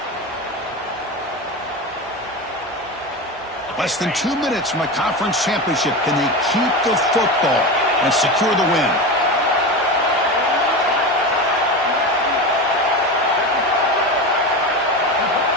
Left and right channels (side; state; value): both; normal; correlation 0.23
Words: Less than 2 minutes from a conference championship. Can they keep the football and secure the win?